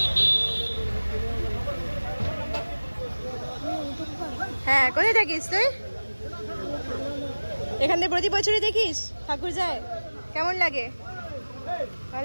হ্যাঁ, কোথায় থাকিস তুই? এখান থেকে প্রতি বছরই দেখিস ঠাকুর যায়? কেমন লাগে?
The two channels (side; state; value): both; inverted; correlation -1.00